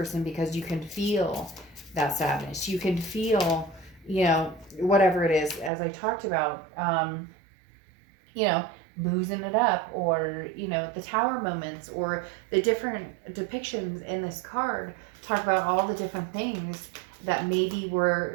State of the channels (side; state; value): left; drops out; at 5.7 s